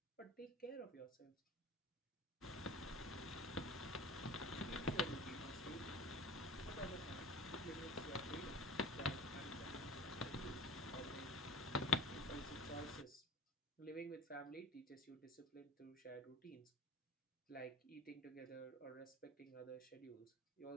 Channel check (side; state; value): both; normal; correlation 0.39